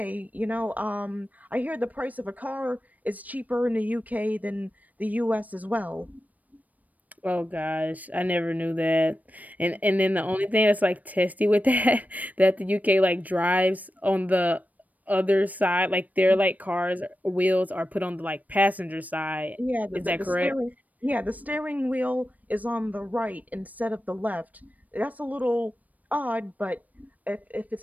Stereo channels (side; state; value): left; late; 0.076 ms